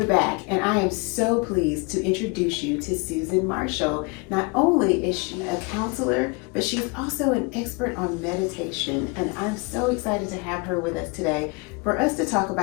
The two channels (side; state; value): right; quieter; 29.9 dB